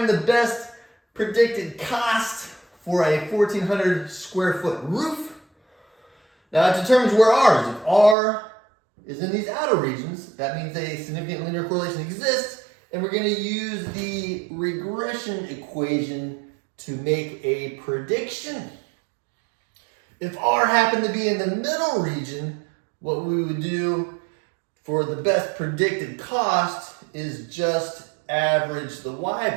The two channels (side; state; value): left; drops out; at 8.2 s